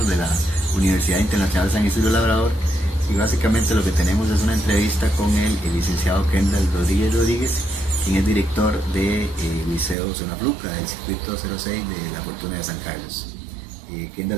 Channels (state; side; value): drops out; left; at 10.0 s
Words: de la Universidad Internacional San Isidro Labrador, y básicamente lo que tenemos es una entrevista con el licenciado Kendall Rodríguez, quien es director del Liceo Zona Fluca del Circuito 06 de la Fortuna de San Carlos.